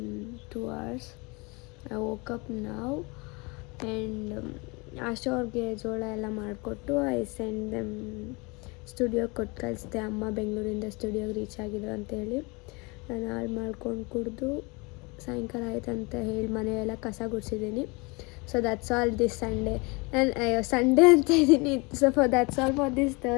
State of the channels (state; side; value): quieter; right; 27.7 dB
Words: 2 hours. I woke up now and ಆಶಾ ಅವ್ರಿಗೆ ಜೋಳ ಎಲ್ಲ ಮಾಡಿಕೊಟ್ಟು ಐ ಸೆಂಡ್ ದೆಮ್ ಸ್ಟುಡಿಯೋಗೆ ಕೊಟ್ಟು ಕಳಿಸ್ದೆ. ಅಮ್ಮ ಬೆಂಗಳೂರಿಂದ ಸ್ಟುಡಿಯೋಗೆ ರೀಚ್ ಆಗಿದ್ರು ಅಂತೇಳಿ ನಾನು ಹಾಳು ಮಾಡ್ಕೊಂಡು ಕುಡಿದು ಸಾಯಂಕಾಲ ಆಯ್ತು ಅಂತ ಹೇಳಿ ಮನೆಯೆಲ್ಲ ಕಸ ಗುಡಿಸಿದ್ದೀನಿ. So that's all this Sunday. ನಾನು ಸಂಡೇ ಅಂತ ಇದ್ದೀನಿ. So that's all for this